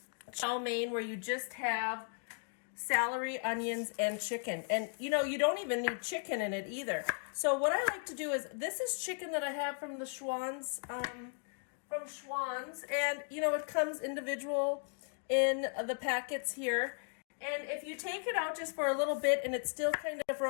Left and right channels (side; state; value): right; silent; 54 dB below the other